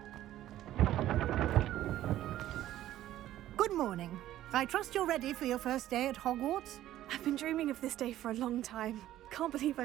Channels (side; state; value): left; quieter; 13.5 dB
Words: Good morning. I trust you're ready for your first day at Hogwarts? I've been dreaming of this day for a long time. Can't believe